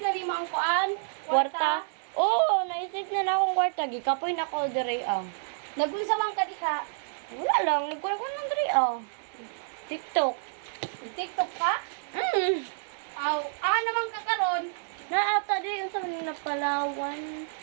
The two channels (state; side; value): silent; left; 59 dB below the other